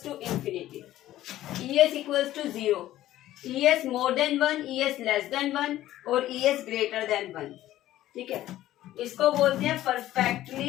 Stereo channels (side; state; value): right; quieter; 14.2 dB